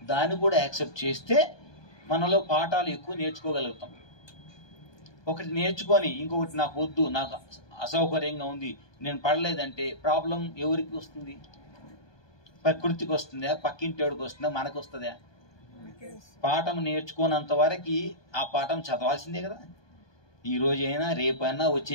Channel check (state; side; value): late; right; 1.2 ms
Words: దాన్ని కూడా యాక్సెప్ట్ చేస్తే మనలో పాఠాలు ఎక్కువ నేర్చుకోగలుగుతాం. ఒకటి నేర్చుకొని ఇంకొకటి నాకు వద్దు, నాకు అసౌకర్యంగా ఉంది, నేను పడలేదంటే ప్రాబ్లం ఎవరికి వస్తుంది? ప్రకృతికి వస్తుందా? పక్కింటోడికి వస్తుందా? మనకు వస్తుందా? పాఠం నేర్చుకోనంత వరకు ఆ పాఠం చదవాల్సిందే కదా. ఈ రోజైనా రేపైనా